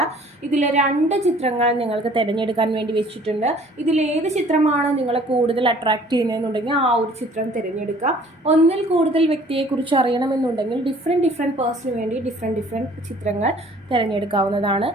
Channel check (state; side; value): normal; both; correlation 0.54